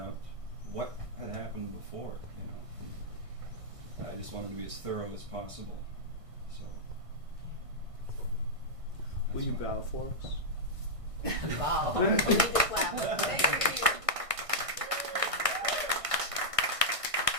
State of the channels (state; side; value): late; left; 1.6 ms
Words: what had happened before, and I just wanted to be as thorough as possible. So. Will you bow for us? Wow. We need this last